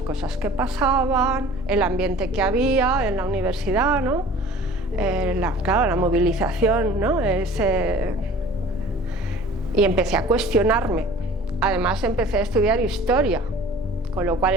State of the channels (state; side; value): normal; both; correlation 0.46